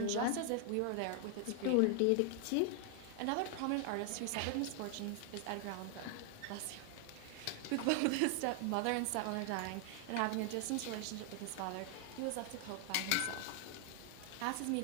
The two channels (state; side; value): different; both; correlation 0.00